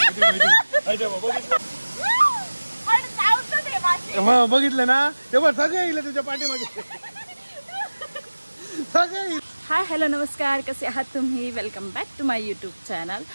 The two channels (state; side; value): inverted; both; correlation -1.00